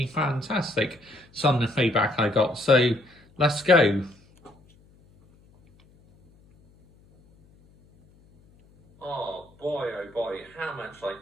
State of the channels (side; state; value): left; noise; hum, 30 dB below the sound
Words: fantastic, some of the feedback I got. So, let's go. Oh boy, how much